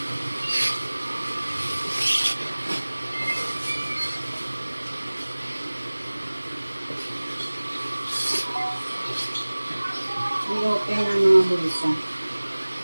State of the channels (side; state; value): both; inverted; correlation -1.00